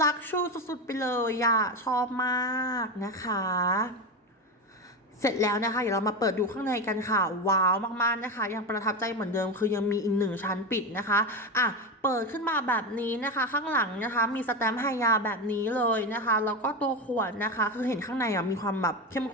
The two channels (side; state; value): both; normal; correlation 0.18